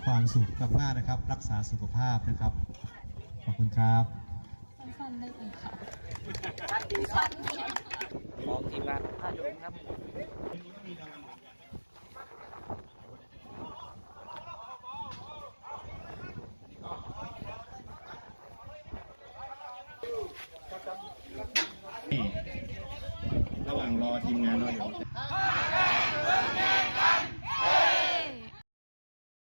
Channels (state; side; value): inverted; both; correlation -1.00